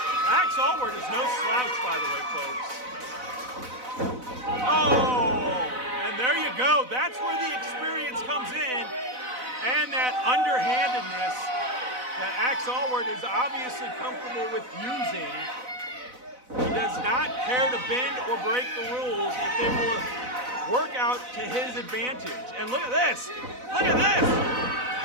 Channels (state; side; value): late; left; 4.0 ms